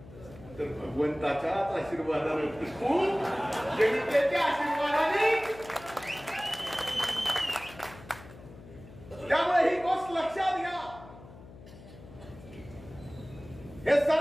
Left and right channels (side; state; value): left; noise; hum, 18 dB below the sound